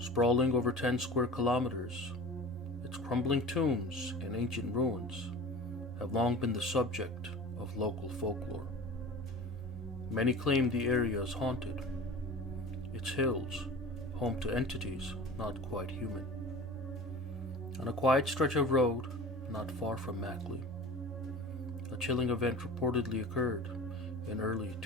over 10 square kilometers, its crumbling tombs and ancient ruins have long been the subject of local folklore. Many claim the area is haunted, its hills home to entities not quite human. On a quiet stretch of road not far from Makli, a chilling event reportedly occurred in early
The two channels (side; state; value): both; normal; correlation 0.37